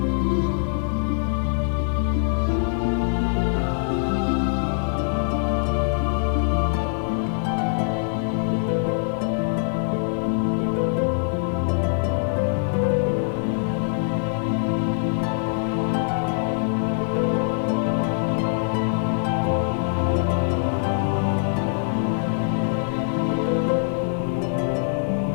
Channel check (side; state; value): right; silent; 63 dB below the other